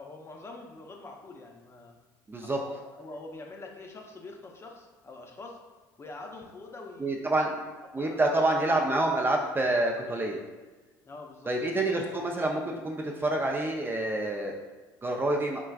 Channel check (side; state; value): both; normal; correlation 0.69